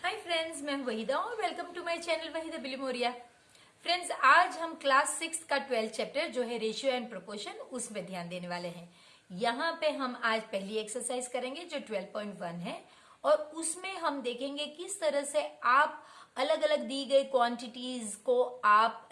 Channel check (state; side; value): identical; both; correlation 1.00